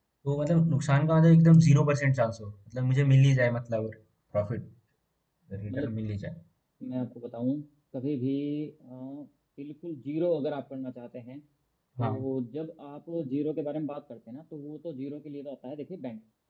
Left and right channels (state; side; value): identical; both; correlation 1.00